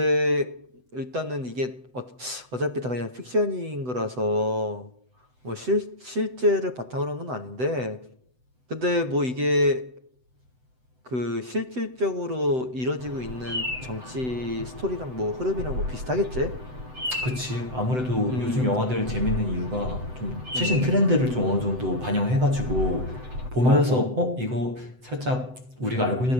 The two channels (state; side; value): late; left; 7.9 ms